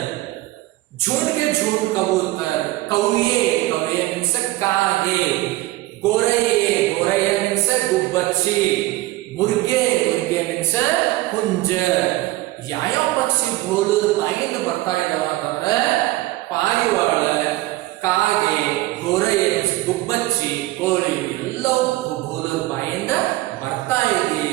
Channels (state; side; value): quieter; left; 17.9 dB